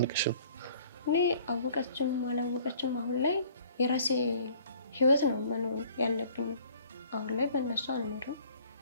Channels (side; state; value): both; inverted; correlation -0.55